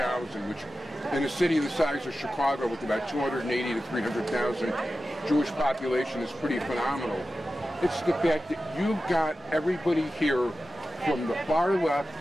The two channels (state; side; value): normal; both; correlation 0.93